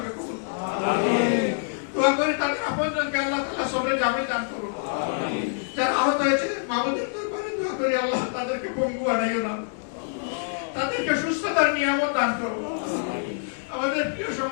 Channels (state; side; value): silent; right; digital silence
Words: কবুল করুন। আমিন। দোয়া করি তাদের আপনজনকে আল্লাহ তাআলা সবরে জামিল দান করুন। আমিন। যারা আহত হয়েছে মাবুদের দরবারে দোয়া করি আল্লাহ তাদেরকে পঙ্গু বানাইও না, তাদেরকে সুস্থতার নিয়ামত দান করুন। আমিন। আমাদের প্রিয়